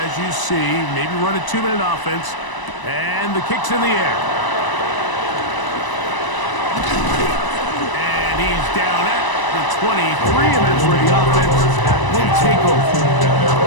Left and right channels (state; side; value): late; right; 1.0 ms